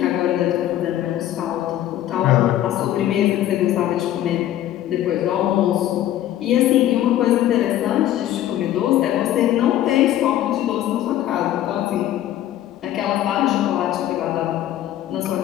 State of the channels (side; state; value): right; quieter; 12.7 dB